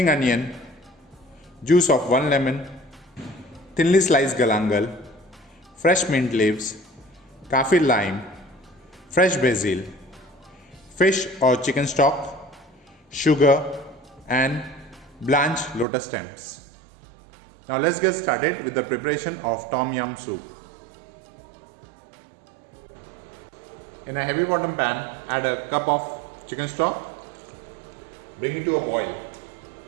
onion, juice of 1 lemon, thinly sliced galangal, fresh mint leaves, kaffir lime, fresh basil, fish or chicken stock, sugar, and blanched lotus stems. Now let's get started with the preparation of Tom Yum soup. In a heavy bottom pan, add a cup of chicken stock. Bring it to a boil.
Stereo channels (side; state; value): left; drops out; at 15.9 s